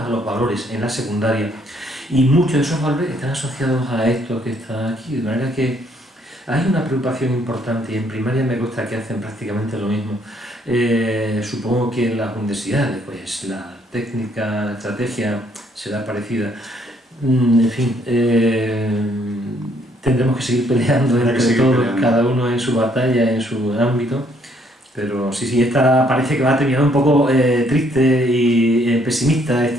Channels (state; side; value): normal; both; correlation 0.67